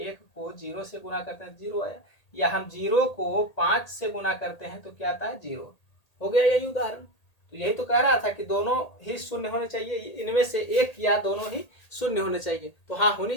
को 0 से गुणा करते हैं 0 आया, या हम 0 को 5 से गुणा करते हैं तो क्या आता है? 0। हो गया यही उदाहरण। तो यही तो कह रहा था कि दोनों ही शून्य होने चाहिए, इनमें से एक या दोनों ही शून्य होने चाहिए। तो हाँ, होनी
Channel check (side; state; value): right; late; 1.8 ms